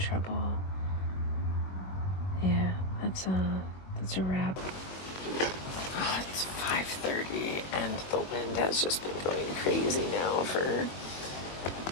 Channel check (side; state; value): right; late; 21 ms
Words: Yeah, that's a wrap. Oh, it's 5:30 and the wind has just been going crazy now for